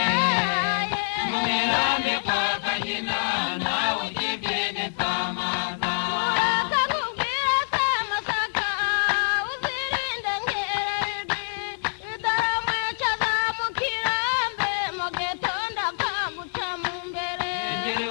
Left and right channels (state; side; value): silent; right; digital silence